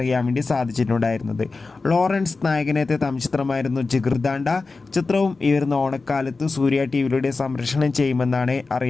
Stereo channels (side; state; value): right; quieter; 3.9 dB